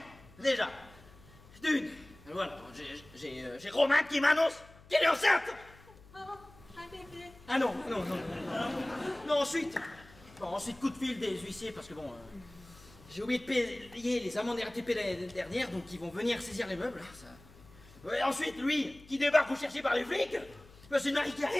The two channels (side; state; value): left; noise; hum, 23 dB below the sound